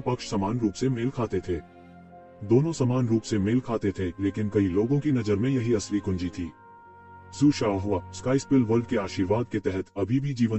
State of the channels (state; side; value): identical; both; correlation 1.00